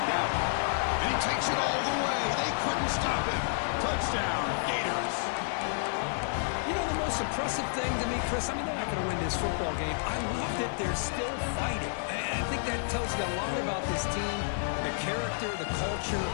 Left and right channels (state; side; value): silent; right; digital silence